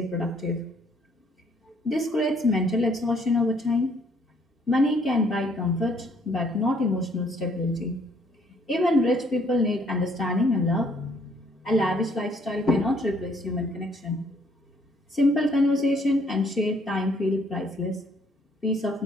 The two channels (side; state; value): both; normal; correlation 0.65